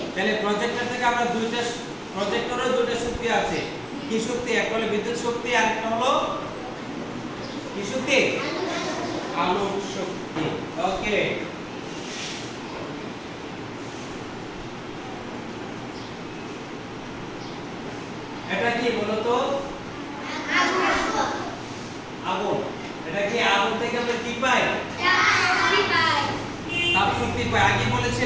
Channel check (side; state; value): both; identical; correlation 1.00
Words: তাহলে প্রজেক্টর থেকে আমরা প্রজেক্টরেও দুইটা শক্তি আছে। কি শক্তি? একটা হলো বিদ্যুৎ শক্তি, আর একটা হলো কি শক্তি? আলোক শক্তি। ওকে, এটা কি বলো তো? আগুন। এটা কি আগুন থেকে আমরা কি পাই? তাপ শক্তি পাই। আগে